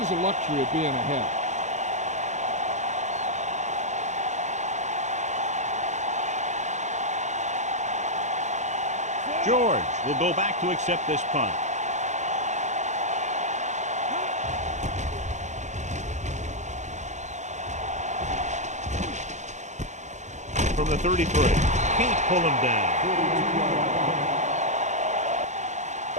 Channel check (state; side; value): late; left; 0.34 ms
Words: a luxury of being ahead. George will go back to accept this punt. From the 33. Can't pull him down.